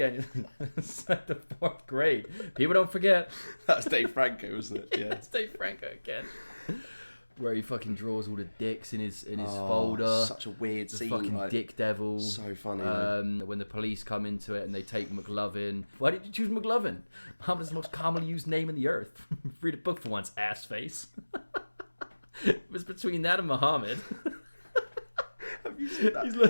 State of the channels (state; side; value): inverted; both; correlation -1.00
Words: It's like the 4th grade. People don't forget. That's Dave Franco, wasn't it? Yeah, it's Dave Franco again. Where he fucking draws all the dicks in his folder. Such a weird scene. Fucking like, dick devil. So funny. When the police come into it and they take McLovin. Why did you choose McLovin? Muhammad is the most commonly used name in the earth. Read a book for once, ass face. It was between that and Muhammad. Have you seen that? He's